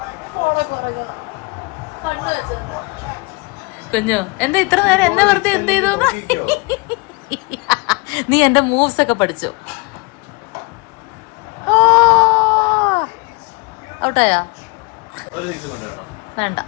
കുഞ്ഞു എന്താ ഇത്ര നേരം എന്നെ വെറുതെ എന്ത് ചെയ്തു? നീ എന്റെ മൂവ്സ് ഒക്കെ പഠിച്ചു. ഔട്ടായാ? വേണ്ട,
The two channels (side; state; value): right; quieter; 28.4 dB